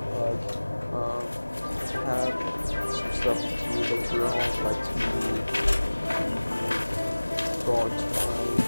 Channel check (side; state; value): both; inverted; correlation -1.00